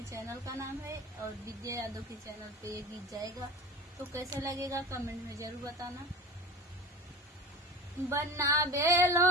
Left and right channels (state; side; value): normal; both; correlation 0.33